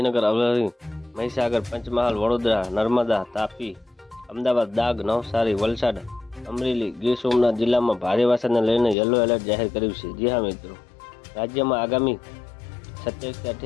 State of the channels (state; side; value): drops out; right; at 9.0 s